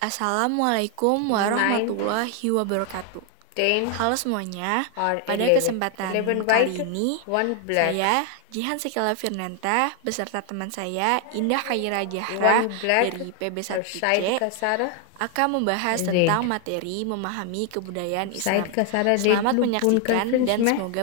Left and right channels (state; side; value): different; both; correlation 0.00